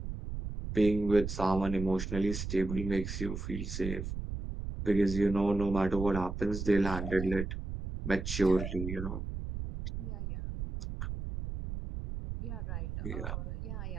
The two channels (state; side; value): noise; right; rumble, 5 dB below the sound